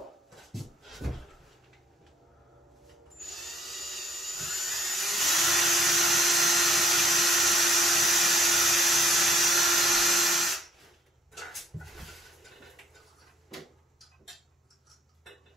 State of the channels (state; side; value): normal; both; correlation 0.64